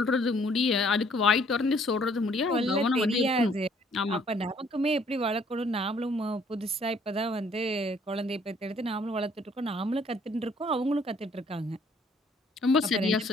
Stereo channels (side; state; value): both; normal; correlation 0.62